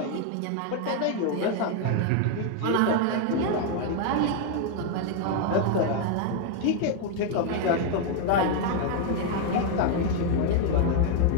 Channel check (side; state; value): both; different; correlation 0.00